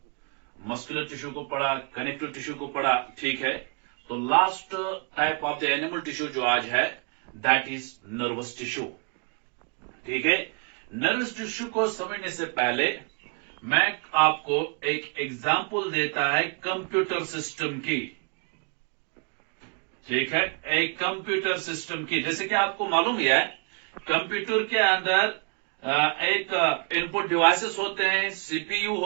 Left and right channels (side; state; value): left; quieter; 35.8 dB